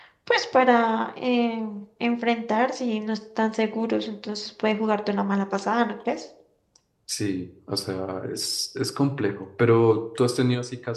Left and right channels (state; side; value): identical; both; correlation 1.00